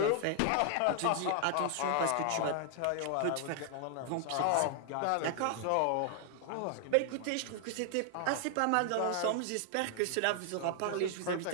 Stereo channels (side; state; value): both; different; correlation 0.00